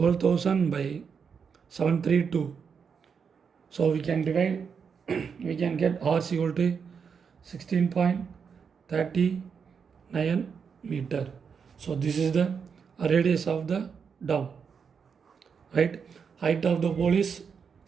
by 732. So we can divide, we can get R is equal to 16.39 meter. So this is the radius of the dome. Right, height of the pole is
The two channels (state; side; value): quieter; left; 6.3 dB